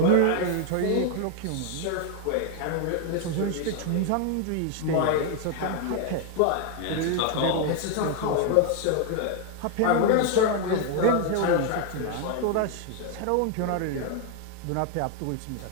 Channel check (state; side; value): different; both; correlation 0.00